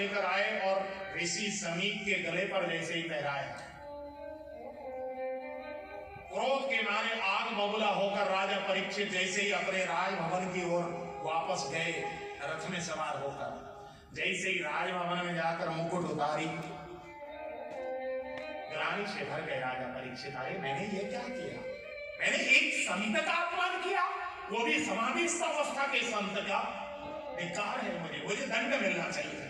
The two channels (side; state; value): both; identical; correlation 1.00